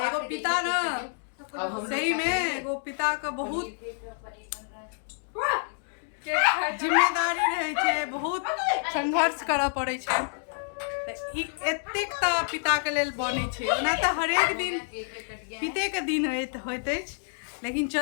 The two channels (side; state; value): right; silent; digital silence